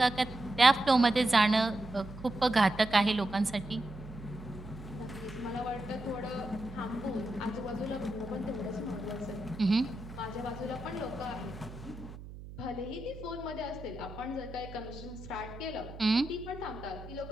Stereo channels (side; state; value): right; noise; hum, 13 dB below the sound